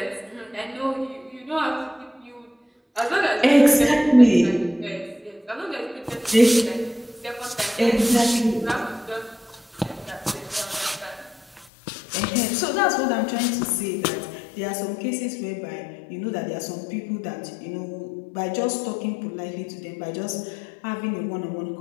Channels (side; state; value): right; drops out; at 11.7 s